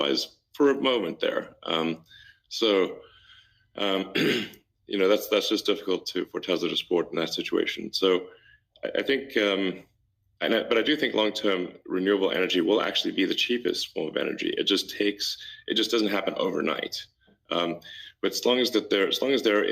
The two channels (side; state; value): both; identical; correlation 1.00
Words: for a moment there. That's just difficult for Tesla to support in that situation. So I think. But I do think long-term renewable energy will actually be the cheapest form of energy. It just doesn't happen overnight. But as long as there